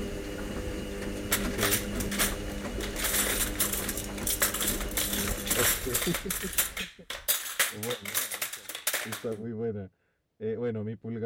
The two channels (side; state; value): both; identical; correlation 1.00